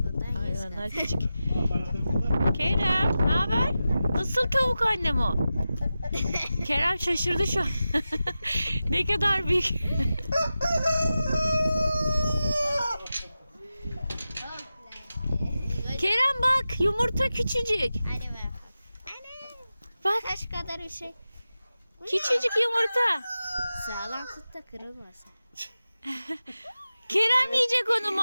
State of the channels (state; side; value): inverted; both; correlation -0.93